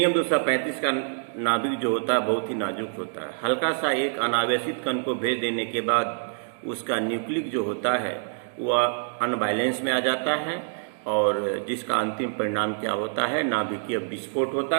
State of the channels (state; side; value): silent; left; digital silence